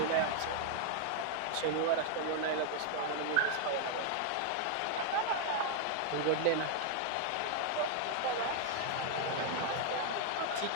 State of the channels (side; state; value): both; different; correlation 0.00